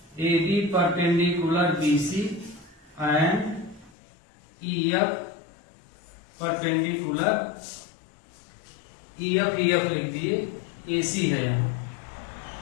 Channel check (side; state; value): right; drops out; at 4.0 s